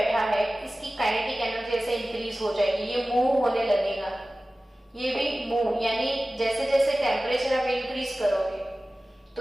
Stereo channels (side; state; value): both; normal; correlation 0.96